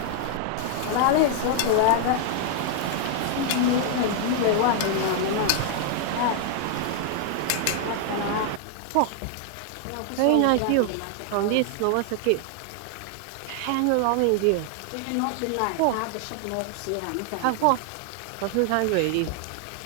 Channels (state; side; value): different; both; correlation 0.00